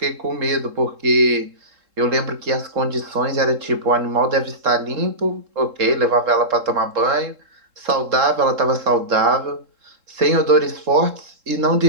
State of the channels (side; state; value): left; late; 3.7 ms